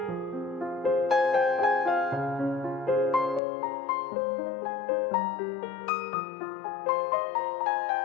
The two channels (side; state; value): right; drops out; at 3.4 s